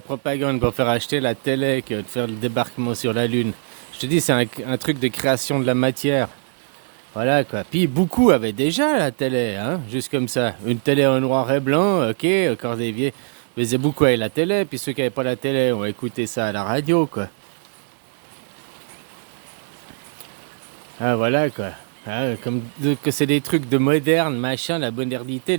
propagande pour faire acheter la télé que de faire le débarquement sur la Lune. Je te dis, c'est un truc de création de la matière. Voilà quoi. Puis beaucoup avaient déjà la télé, hein, juste comme ça. Une télé en noir et blanc, ok, encore des vieux. Faisaient beaucoup avec la télé, puis ceux qui n'avaient pas la télé ont écouté ça à la radio, quoi. Ah voilà quoi. Ah, que c'est des trucs de moderne, machin, la modernité,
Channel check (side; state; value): left; silent; digital silence